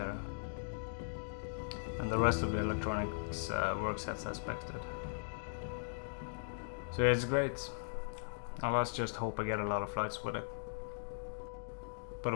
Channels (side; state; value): right; silent; digital silence